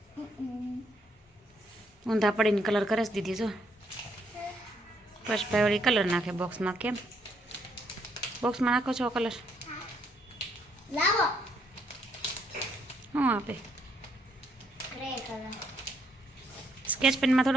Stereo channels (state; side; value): normal; both; correlation 0.73